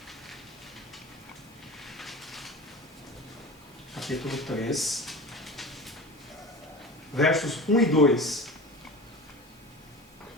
capítulo 3, versos 1 e 2.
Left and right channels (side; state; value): both; normal; correlation 0.33